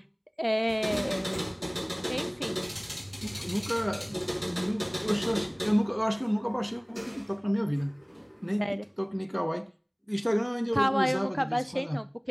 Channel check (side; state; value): both; identical; correlation 1.00